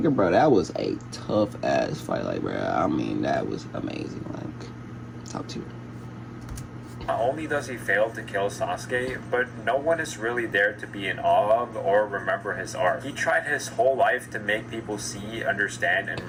bro, that was a tough ass fight. Like, bro, I mean, that was amazing. Like, top tier. Not only does he fail to kill Sasuke, but no one is really there to be in awe of or remember his art. He tried his whole life to make people see, understand, and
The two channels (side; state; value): both; identical; correlation 1.00